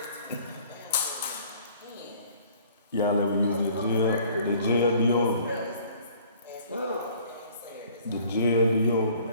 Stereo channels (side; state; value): both; inverted; correlation -0.54